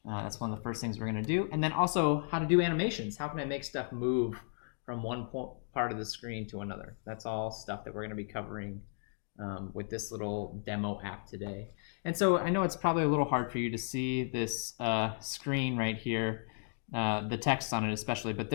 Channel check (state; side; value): silent; right; digital silence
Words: That's one of the first things we're going to do. And then also how to do animations. How can I make stuff move from one part of the screen to another? That's all stuff that we're going to be covering with this little demo app today. And so I know it's probably a little hard for you to see this screen right here, the text on it especially, but